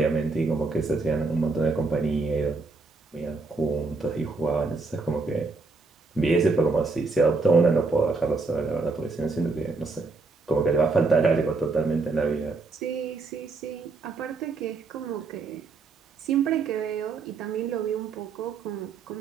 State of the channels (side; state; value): left; quieter; 3.9 dB